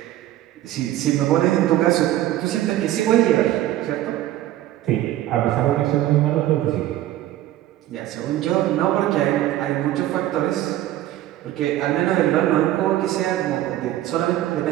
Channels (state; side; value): quieter; left; 14.0 dB